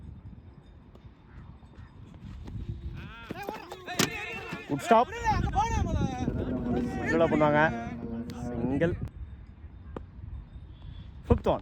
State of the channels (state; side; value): identical; both; correlation 1.00